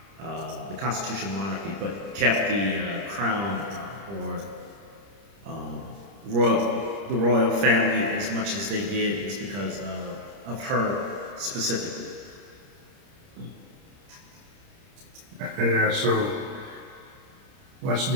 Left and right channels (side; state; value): left; late; 30 ms